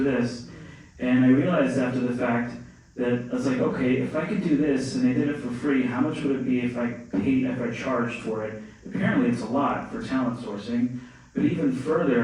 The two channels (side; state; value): both; identical; correlation 1.00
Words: And I realized after the fact that I was like, okay, if I could do this and I did it for free, how much would it be if I charged for it? Apparently it's a lot for talent sourcing. But even